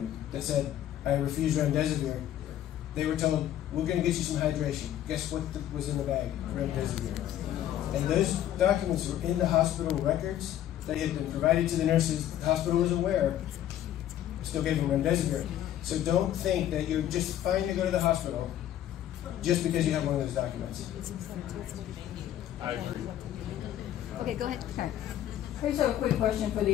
that said, I refuse remdesivir. They were told, we're going to get you some hydration. Guess what was in the bag? Remdesivir. And those documents were in the hospital records. They had been provided to the nurses. The hospital was aware. Still gave them remdesivir. So don't think that you're just fine to go to the hospital just because you have one of those documents. I agree. Okay, go ahead. Karen. I just have a quick question for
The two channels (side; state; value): right; quieter; 11.7 dB